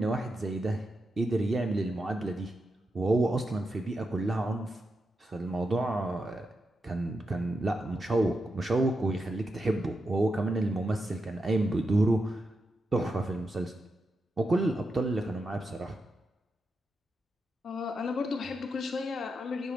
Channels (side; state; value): both; normal; correlation 0.86